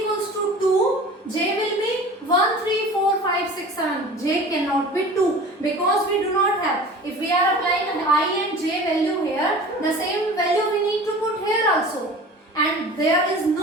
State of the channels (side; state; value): both; normal; correlation 0.40